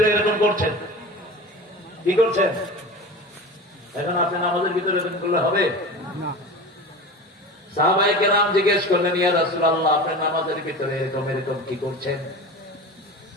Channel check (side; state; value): both; normal; correlation 0.32